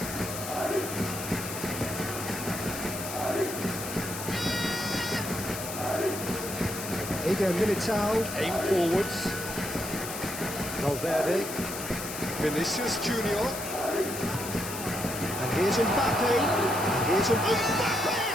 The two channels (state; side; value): noise; left; hiss, 8 dB below the sound